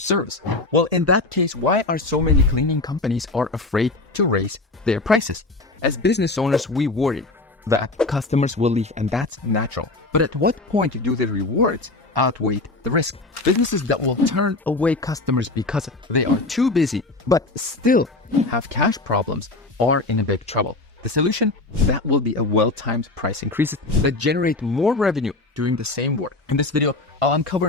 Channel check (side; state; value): right; quieter; 3.1 dB